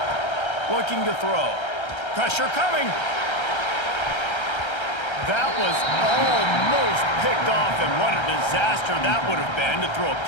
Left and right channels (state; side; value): late; right; 1.3 ms